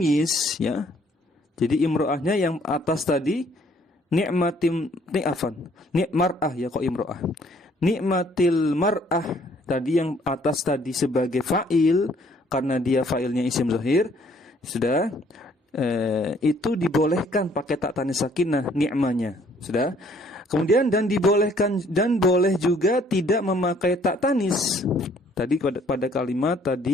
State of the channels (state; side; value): normal; both; correlation 0.62